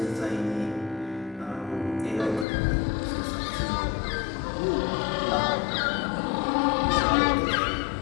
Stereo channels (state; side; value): drops out; right; at 2.5 s